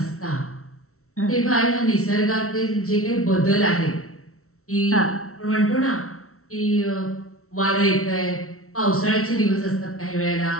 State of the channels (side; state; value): right; late; 0.63 ms